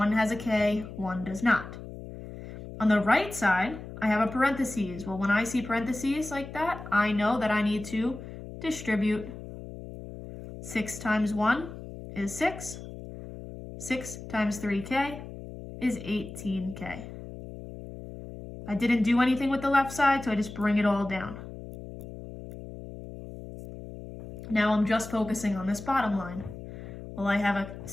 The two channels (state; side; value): noise; left; hum, 12 dB below the sound